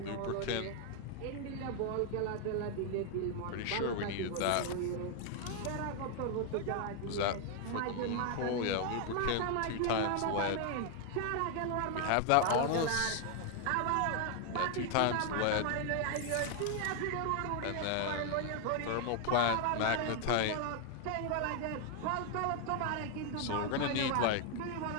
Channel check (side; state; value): both; different; correlation 0.00